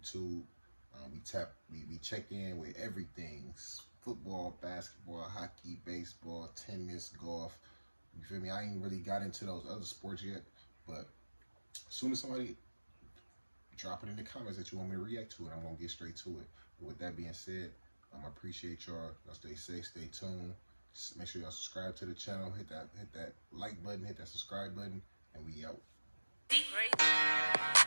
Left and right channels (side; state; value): both; inverted; correlation -1.00